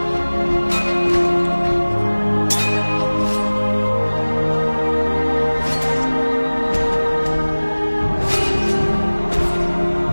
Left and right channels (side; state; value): both; inverted; correlation -1.00